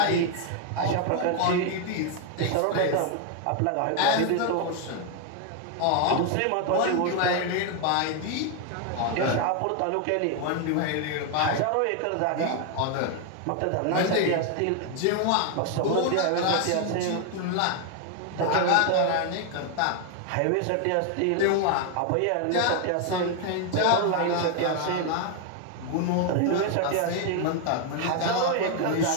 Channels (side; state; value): both; different; correlation 0.01